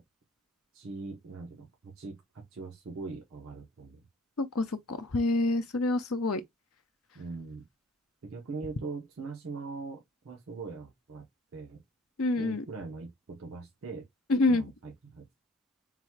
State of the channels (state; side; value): normal; both; correlation 0.54